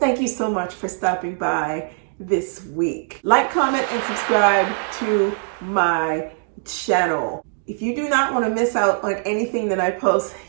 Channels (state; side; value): silent; left; digital silence